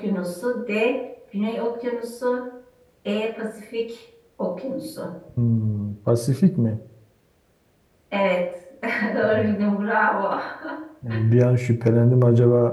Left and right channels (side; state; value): both; identical; correlation 1.00